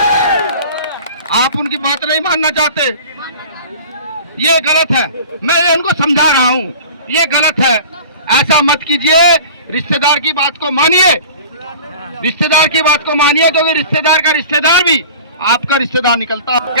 आप उनकी बात नहीं मानना चाहते, ये गलत है। मैं ये उनको समझा रहा हूँ, ये गलत है, ऐसा मत कीजिए। रिश्तेदार की बात को मानिए, रिश्तेदार की बात को मानिए, क्योंकि रिश्तेदार का रिश्तेदार भी आपका रिश्तेदार निकलता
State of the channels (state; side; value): inverted; both; correlation -0.40